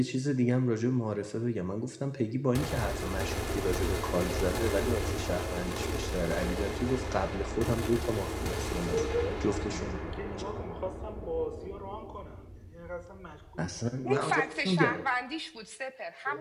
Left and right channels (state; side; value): identical; both; correlation 1.00